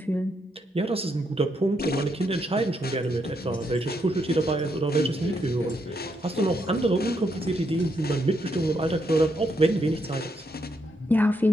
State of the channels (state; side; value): normal; both; correlation 0.78